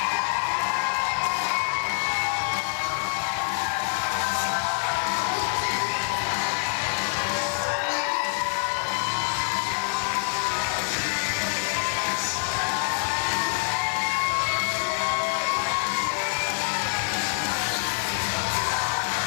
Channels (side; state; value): right; silent; 60 dB below the other